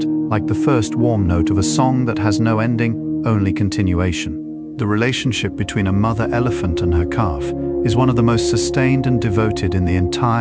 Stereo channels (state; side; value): identical; both; correlation 1.00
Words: like the first warm note of a song that has no ending, only continuation. The relationship between a mother elephant and her calf is one of the most sustained and devoted in the